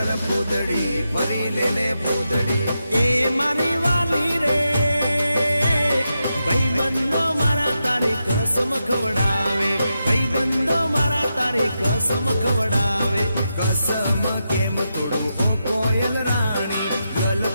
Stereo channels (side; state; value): both; inverted; correlation -0.87